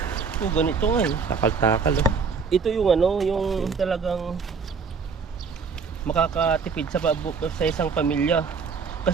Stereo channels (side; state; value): left; quieter; 5.4 dB